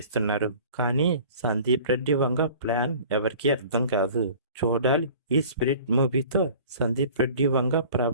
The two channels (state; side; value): inverted; both; correlation -0.45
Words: కానీ సందీప్ రెడ్డి వంగ ప్లాన్ ఎవరికీ అర్థం కాదు. చూడాలి ఈ 'స్పిరిట్' మూవీతో సందీప్ రెడ్డి వంగ